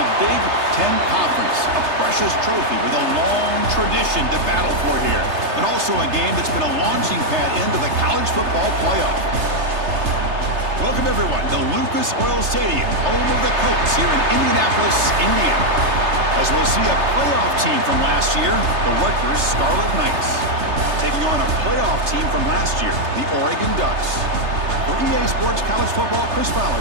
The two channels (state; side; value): late; left; 3.3 ms